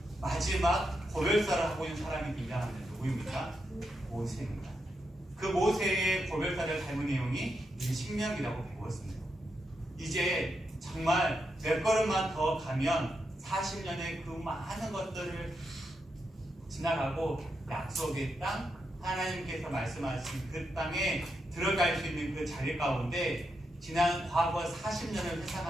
마지막 고별사를 하고 있는 사람이 등장하는데 누구입니까? 모세입니다. 그 모세의 고별사를 닮은 내용이 이 신명기라고 배웠습니다. 이제 정말 몇 걸음만 더 가면 40년의 그 많은 것들을 지나가고 약속의 땅, 하나님께서 말씀하신 그 땅에 들어갈 수 있는 그 자리 가운데 지난 과거 40년을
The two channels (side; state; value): both; normal; correlation 0.84